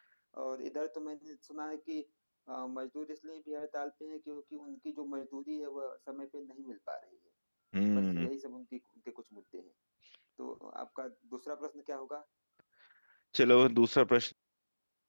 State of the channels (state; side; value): inverted; both; correlation -1.00